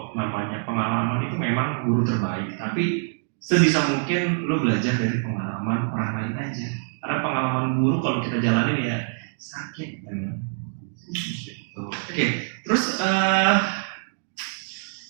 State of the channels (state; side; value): silent; left; digital silence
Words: namanya pengalaman itu memang guru terbaik. Tapi sebisa mungkin lu belajar dari pengalaman orang lain aja. Karena pengalaman guru kalau kita jalanin ya sakit kan. Oke. Terus